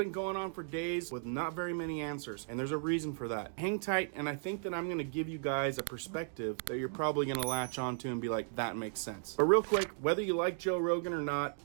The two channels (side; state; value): left; silent; digital silence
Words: going on for days with not very many answers, and there's a reason for that. Hang tight, and I think that I'm going to give you guys a perspective that you're probably going to latch onto and be like, that makes sense. But real quick, whether you like Joe Rogan or not,